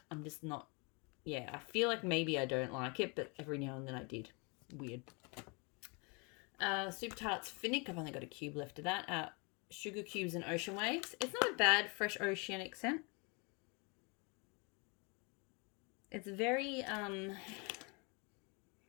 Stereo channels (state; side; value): quieter; right; 31.5 dB